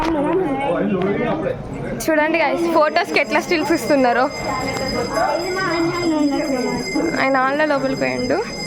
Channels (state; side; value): identical; both; correlation 1.00